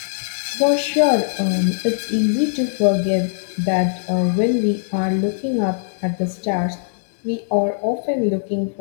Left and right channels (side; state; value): right; silent; digital silence